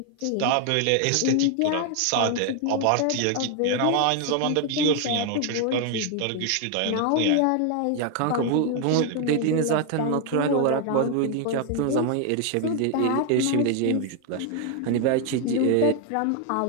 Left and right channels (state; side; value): different; both; correlation 0.00